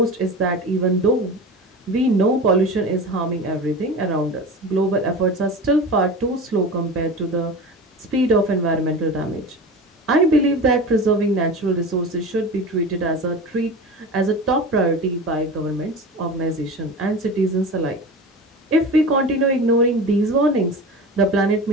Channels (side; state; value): both; normal; correlation 0.31